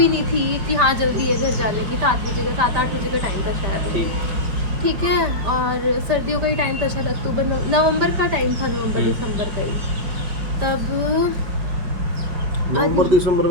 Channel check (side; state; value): left; late; 5.1 ms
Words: नहीं थी कि हाँ जल्दी है घर जाने की। 7-8 बजे का टाइम था शायद, ठीक। ठीक है। और सर्दियों का ही टाइम था शायद, अक्टूबर नवंबर का टाइम था, नवंबर दिसंबर का ही। तब नवंबर दिसंबर